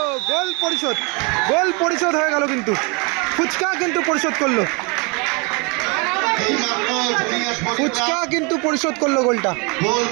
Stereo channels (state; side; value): quieter; left; 31.1 dB